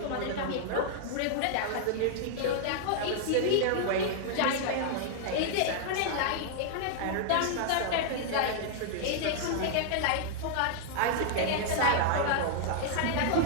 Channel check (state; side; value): different; both; correlation -0.01